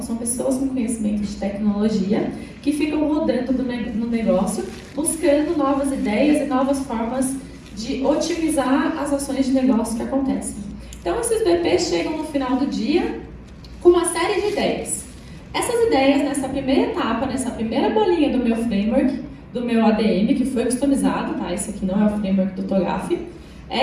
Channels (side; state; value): both; identical; correlation 1.00